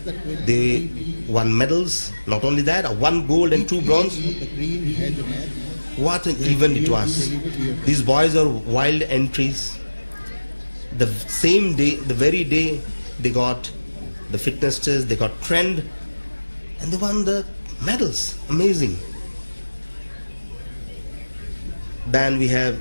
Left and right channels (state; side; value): inverted; both; correlation -1.00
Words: the 20 They won medals. Not only that, 1 gold and 2 bronze. the green has a match. What an event it was. These boys are wild entries. The same day, the very day they got the fitness test, they got trained, and they won the medals. Amazing. Then we have